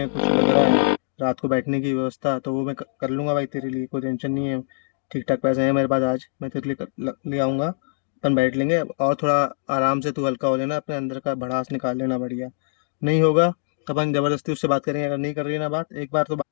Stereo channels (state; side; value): silent; right; digital silence